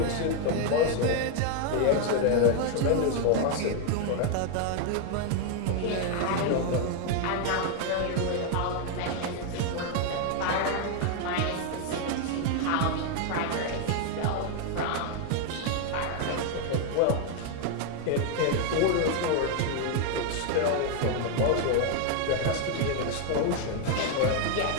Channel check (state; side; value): different; both; correlation 0.00